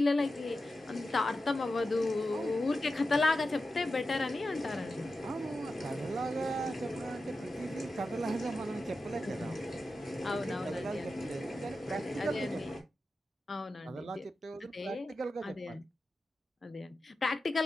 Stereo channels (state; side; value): normal; both; correlation 0.91